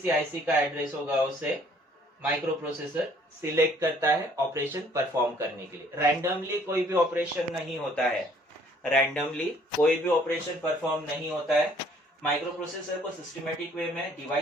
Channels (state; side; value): normal; both; correlation 0.60